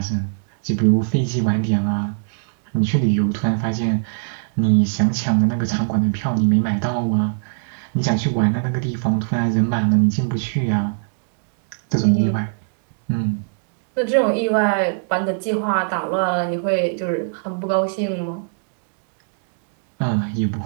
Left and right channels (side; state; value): left; silent; digital silence